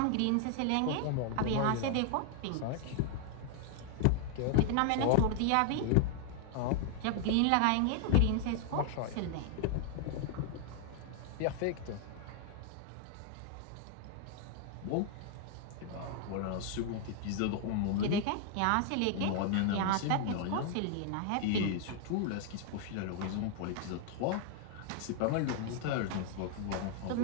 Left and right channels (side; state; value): both; different; correlation 0.00